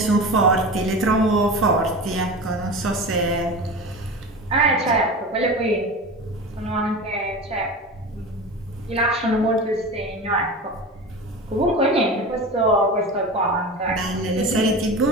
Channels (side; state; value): both; normal; correlation 0.30